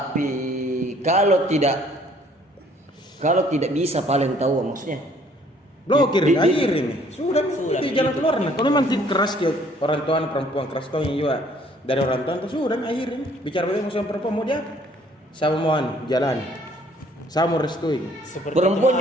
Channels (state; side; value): normal; both; correlation 0.60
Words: kalau tidak bisa paling tahu maksudnya. Blokir, Di- akhir ini. Sudah, Sudah, itu jalan begitu. keluar nih. Kalau memang keras ke orang tua perempuan keras tuh juga dari orang tua itu sudah akhir ini. Bicara bagaimana sama perempuan mau dia sama mohon jalan. Saya mau restui. seperti Perempuan